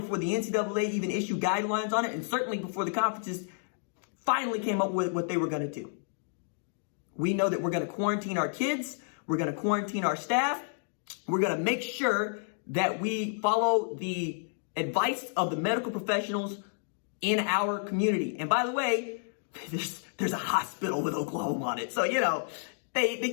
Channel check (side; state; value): right; silent; digital silence